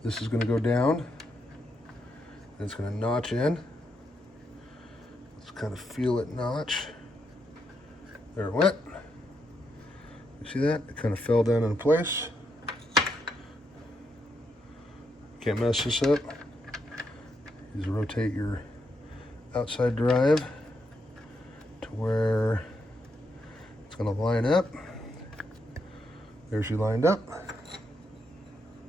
This is going to go down. And it's going to notch in. Let's kind of feel it notch. There it went. You see that? It kind of fell down in place. Can't mess this up. Just rotate your outside drive to where it's going to line up. There she lined up.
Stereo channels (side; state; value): both; normal; correlation 0.80